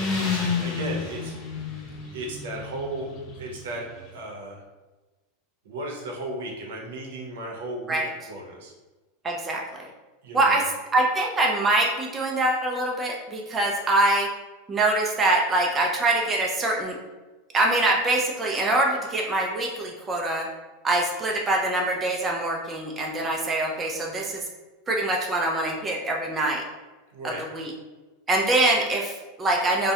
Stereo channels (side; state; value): both; normal; correlation 0.33